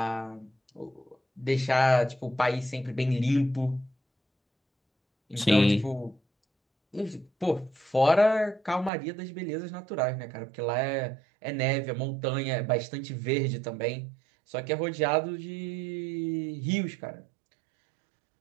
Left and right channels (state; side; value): drops out; left; at 8.9 s